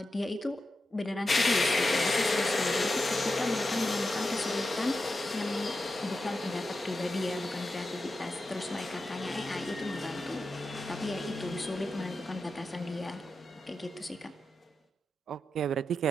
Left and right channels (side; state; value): both; normal; correlation 0.90